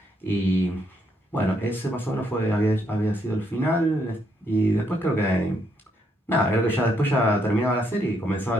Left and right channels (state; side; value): normal; both; correlation 0.74